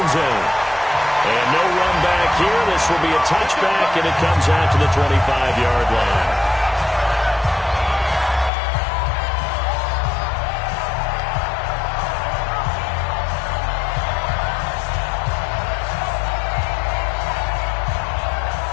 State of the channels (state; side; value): drops out; right; at 8.5 s